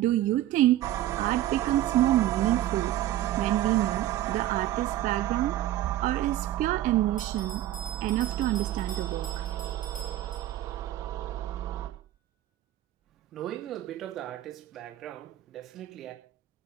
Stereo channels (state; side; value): quieter; left; 13.9 dB